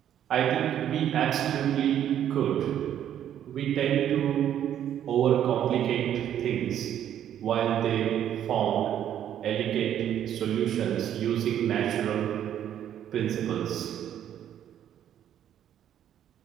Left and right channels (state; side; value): quieter; left; 10.4 dB